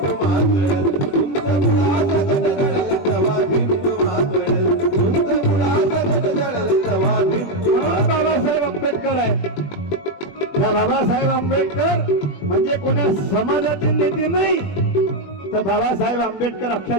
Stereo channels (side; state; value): right; late; 21 ms